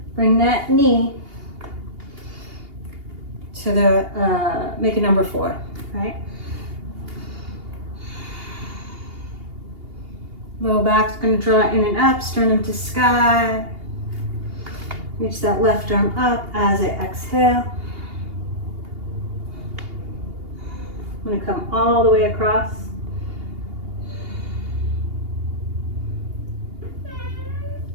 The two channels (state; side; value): late; left; 2.8 ms